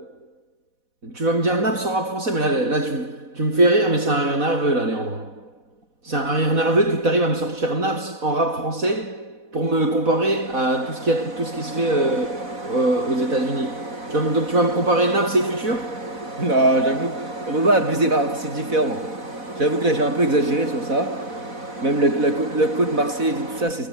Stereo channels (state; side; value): late; left; 4.1 ms